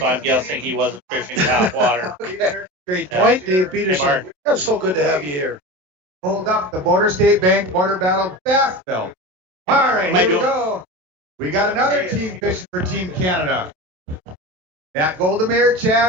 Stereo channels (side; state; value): left; late; 27 ms